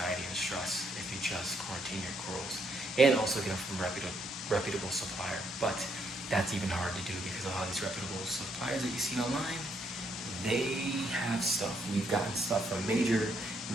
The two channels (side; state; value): both; normal; correlation 0.74